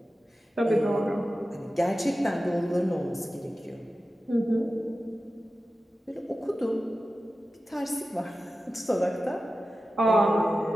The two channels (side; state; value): both; normal; correlation 0.94